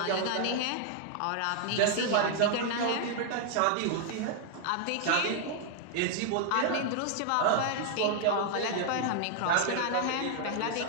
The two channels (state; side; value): different; both; correlation 0.00